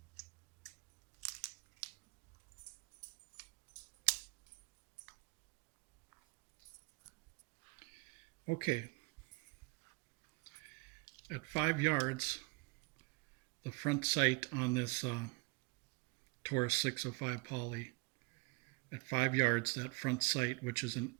Okay, at 5 yards, the front sight on this Taurus 605 poly, at 5 yards, that front sight, which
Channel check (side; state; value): left; quieter; 25.9 dB